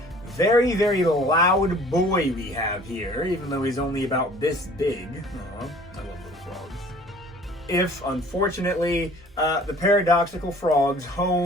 Very, very loud boy we have here, even though he's only about this big. Aw, I love little frogs. If, unfortunately, the paradoxical frog's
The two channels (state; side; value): normal; both; correlation 0.50